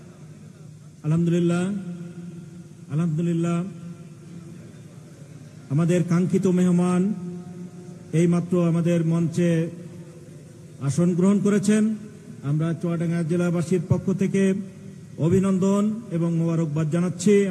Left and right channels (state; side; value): identical; both; correlation 1.00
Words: আলহামদুলিল্লাহ আলহামদুলিল্লাহ আমাদের কাঙ্ক্ষিত মেহমান এইমাত্র আমাদের মঞ্চে আসন গ্রহণ করেছেন। আমরা চুয়াডাঙ্গা জেলাবাসীর পক্ষ থেকে অভিনন্দন এবং মোবারকবাদ জানাচ্ছি